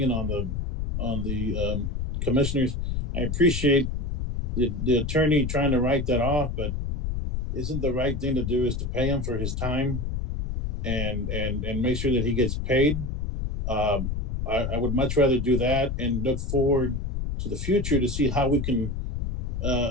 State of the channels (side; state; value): left; noise; rumble, 2 dB below the sound